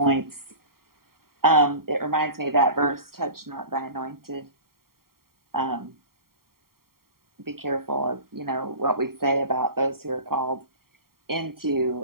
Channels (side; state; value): left; late; 0.93 ms